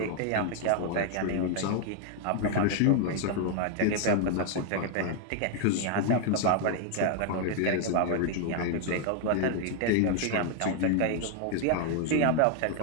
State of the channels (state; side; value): different; both; correlation 0.00